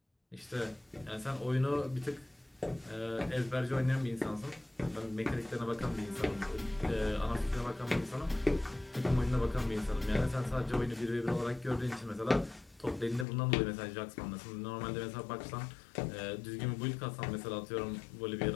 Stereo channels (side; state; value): right; drops out; at 13.2 s